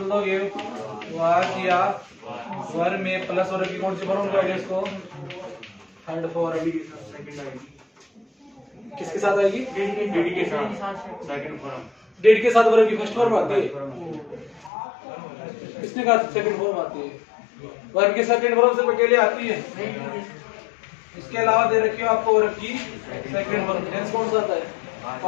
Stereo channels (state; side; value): drops out; right; at 14.7 s